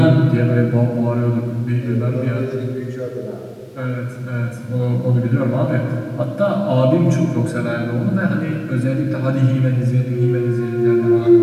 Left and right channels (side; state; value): both; identical; correlation 1.00